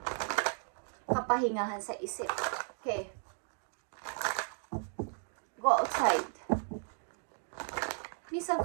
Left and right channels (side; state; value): left; silent; 54 dB below the other